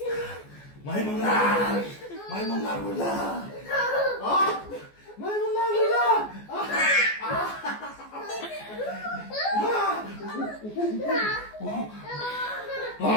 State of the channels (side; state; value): right; late; 14 ms